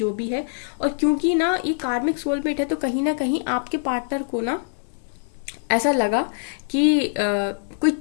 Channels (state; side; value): silent; right; digital silence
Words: भी है। और क्योंकि ना ये कार्मिक सोलमेट है, तो कहीं ना कहीं आपके पार्टनर को ना ऐसा लगा कि कोई